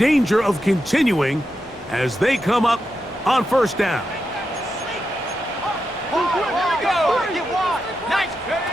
of continuing as they come up on 1st down.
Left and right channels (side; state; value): both; normal; correlation 0.87